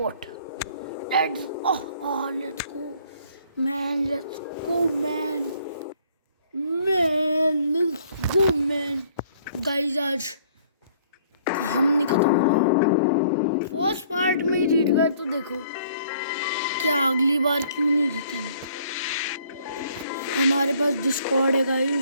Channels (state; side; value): inverted; both; correlation -0.61